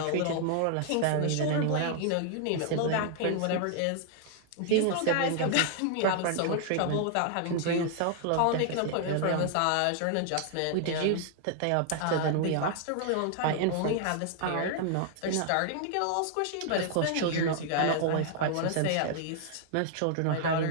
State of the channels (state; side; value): different; both; correlation 0.00